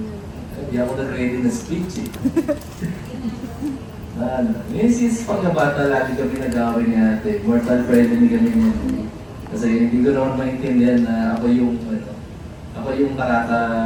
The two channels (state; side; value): identical; both; correlation 1.00